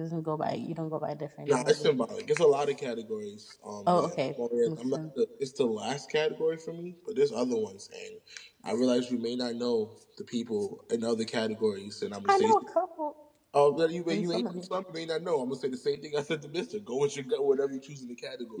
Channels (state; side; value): identical; both; correlation 1.00